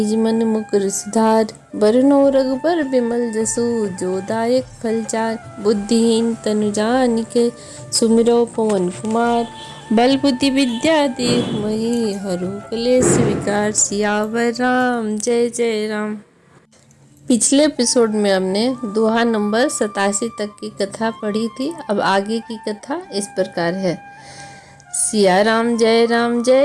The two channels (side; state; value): both; identical; correlation 1.00